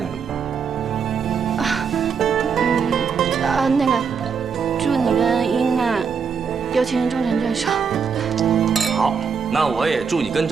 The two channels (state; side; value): quieter; left; 6.1 dB